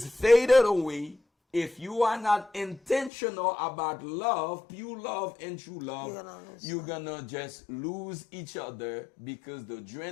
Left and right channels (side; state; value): right; drops out; at 3.1 s